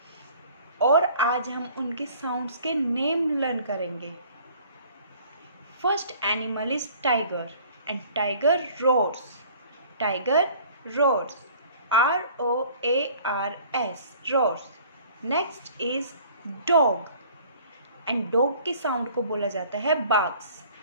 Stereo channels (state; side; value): inverted; both; correlation -0.52